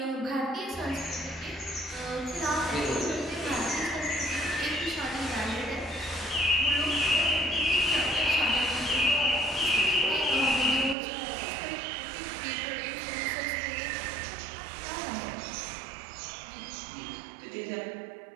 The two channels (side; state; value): left; drops out; at 11.0 s